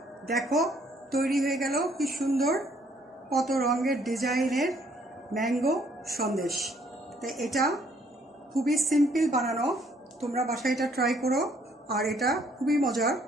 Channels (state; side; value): normal; both; correlation 0.65